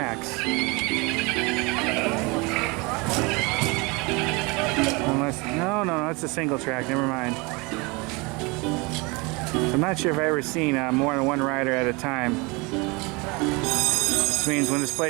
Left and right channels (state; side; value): quieter; left; 27.1 dB